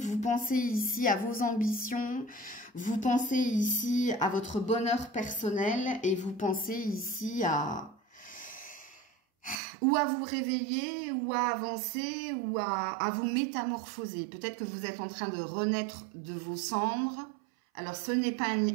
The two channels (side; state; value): left; drops out; at 9.6 s